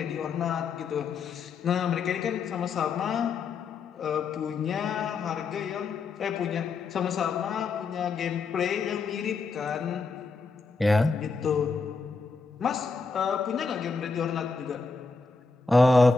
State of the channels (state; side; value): quieter; right; 4.4 dB